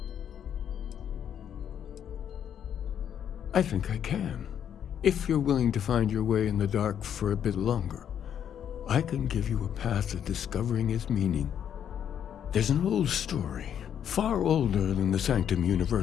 I think I can. If you're willing to find your way in the dark for a bit longer, I can give you a path to discovering its meaning. There's an old story, far older than the Sanctum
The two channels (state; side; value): quieter; right; 9.1 dB